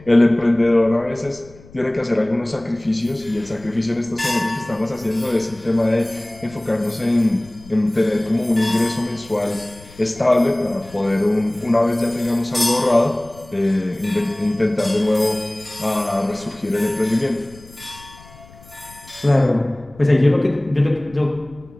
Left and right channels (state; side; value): noise; left; rumble, 22 dB below the sound